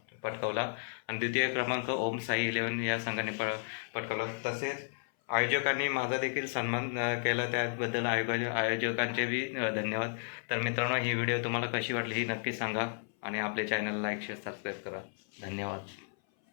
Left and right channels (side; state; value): right; silent; 56 dB below the other